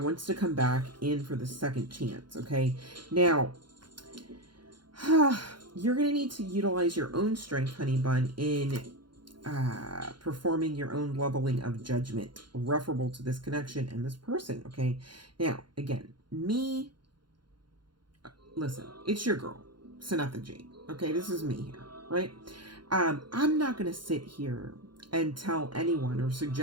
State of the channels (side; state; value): left; late; 0.72 ms